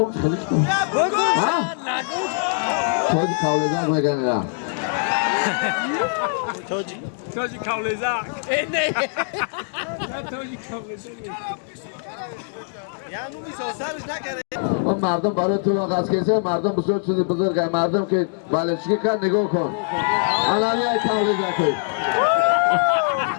خلیچ کن تویجی کاولزک نگنه توجی کاولزک اینه توجی کاولزک یعنی میسازرش نکرده اون مردم برای تو آغاز کسی مردم بسیار چیزی بزرگه مردم که بالشگی کن نگاه کن علامه کاولزک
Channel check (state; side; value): silent; right; 64 dB below the other